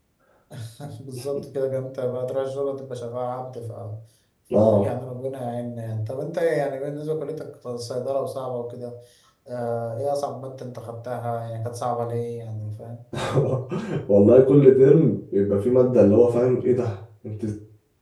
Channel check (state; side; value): identical; both; correlation 1.00